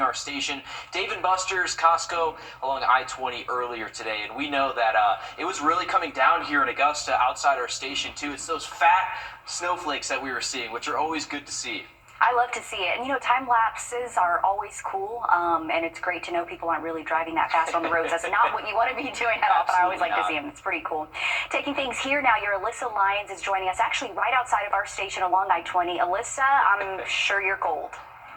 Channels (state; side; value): identical; both; correlation 1.00